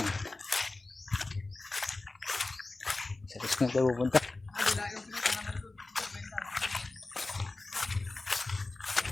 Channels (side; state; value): right; quieter; 3.2 dB